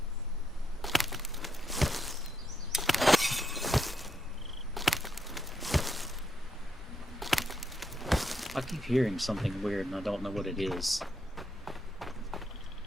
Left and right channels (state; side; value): normal; both; correlation 0.80